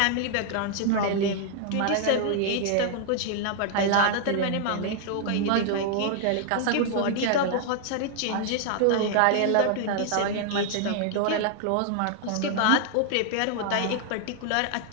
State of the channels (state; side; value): different; both; correlation 0.00